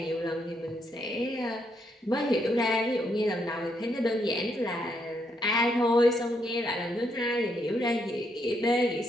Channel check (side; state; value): both; normal; correlation 0.76